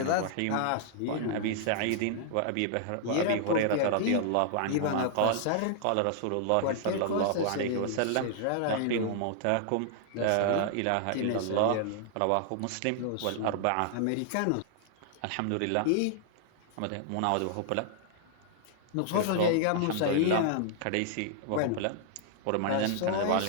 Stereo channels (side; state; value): both; different; correlation -0.01